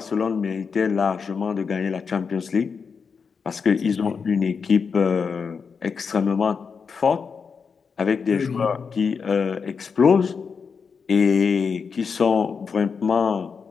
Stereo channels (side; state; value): right; quieter; 5.7 dB